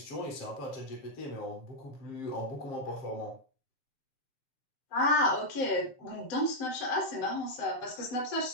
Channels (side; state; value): right; late; 7.7 ms